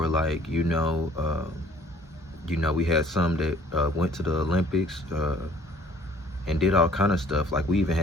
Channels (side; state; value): both; normal; correlation 0.56